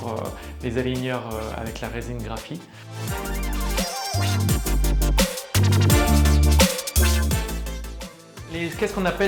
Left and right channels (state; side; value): identical; both; correlation 1.00